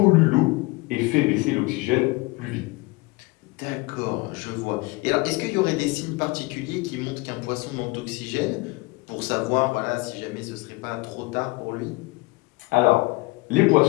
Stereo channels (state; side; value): quieter; right; 23.9 dB